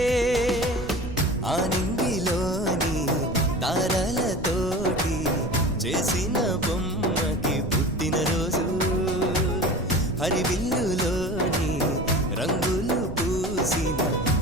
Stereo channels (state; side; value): noise; right; rumble, 10 dB below the sound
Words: ఆనింగిలోని తారలతోటి చేసిన బొమ్మకి పుట్టినరోజు, హరివిల్లులోని రంగులు పూసిన